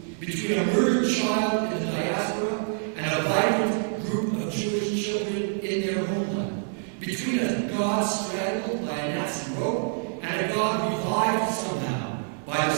between a murdered child in the diaspora and a vibrant group of Jewish children in their homeland, between a God strangled by a Nazi rope and a God revived somehow by the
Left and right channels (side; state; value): left; silent; digital silence